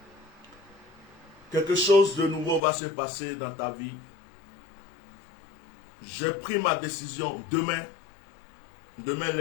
Quelque chose de nouveau va se passer dans ta vie. J'ai pris ma décision demain. Demain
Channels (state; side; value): drops out; right; at 2.6 s